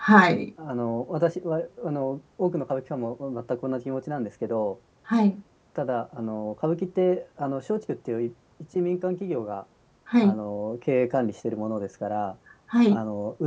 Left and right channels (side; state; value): both; identical; correlation 1.00